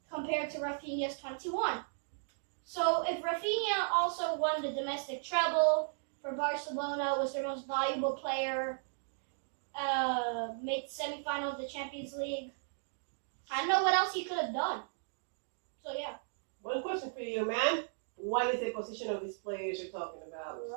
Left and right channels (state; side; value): silent; left; digital silence